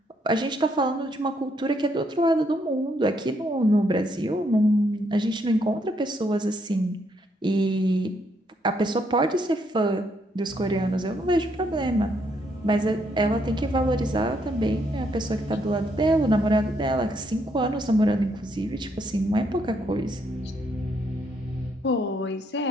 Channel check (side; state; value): both; normal; correlation 0.73